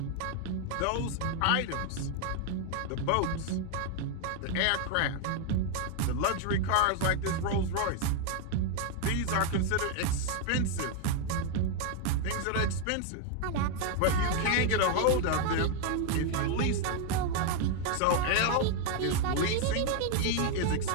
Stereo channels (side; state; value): both; different; correlation 0.01